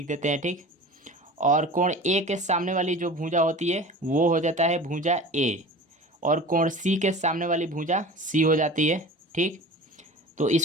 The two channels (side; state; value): both; normal; correlation 0.37